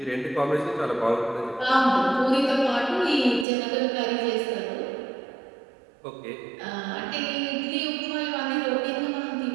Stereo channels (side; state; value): left; drops out; at 3.5 s